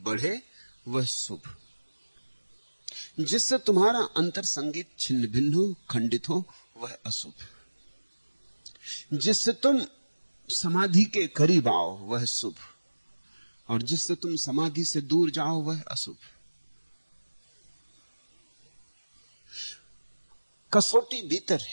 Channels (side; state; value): both; inverted; correlation -1.00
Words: बढ़े वह शुभ, जिससे तुम्हारा अंतर संगीत छिन्न भिन्न हो, खंडित हो, वह अशुभ। जिससे तुम समाधि के करीब आओ वह शुभ, और जिससे तुम समाधि से दूर जाओ वह अशुभ। कसौटी भीतर